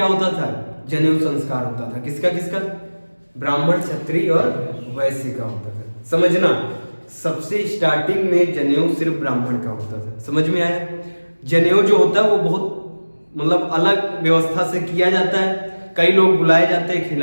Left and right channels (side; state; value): both; inverted; correlation -1.00